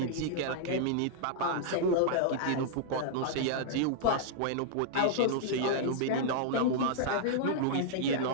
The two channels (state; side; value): different; both; correlation -0.01